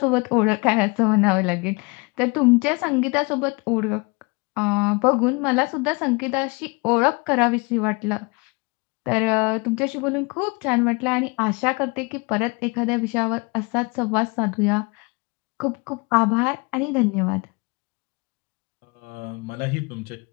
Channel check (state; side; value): quieter; right; 29.0 dB